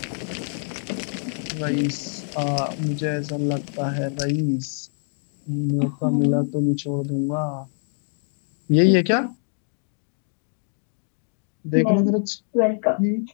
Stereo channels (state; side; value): silent; right; 62 dB below the other